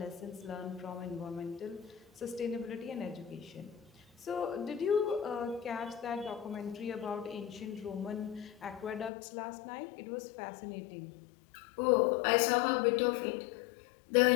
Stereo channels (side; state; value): right; drops out; at 9.1 s